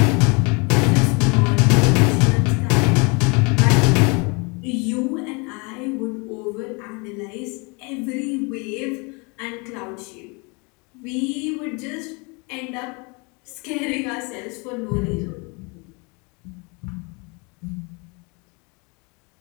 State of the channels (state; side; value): quieter; right; 30.4 dB